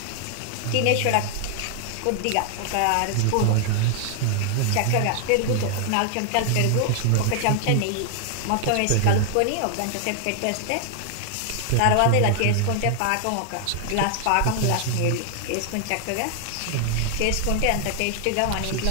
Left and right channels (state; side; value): different; both; correlation 0.00